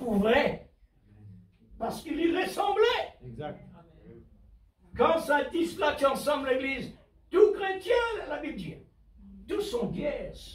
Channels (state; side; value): identical; both; correlation 1.00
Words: vrai, parce qu'il y ressemblait. Exact. Quand ça dit cela, tu ensemble l'église, tout chrétien, la Bible dit, tous sont